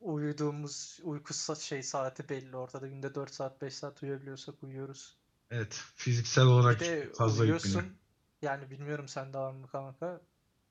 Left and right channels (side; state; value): both; identical; correlation 1.00